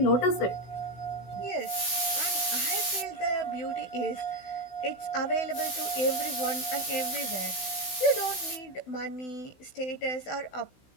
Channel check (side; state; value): right; late; 16 ms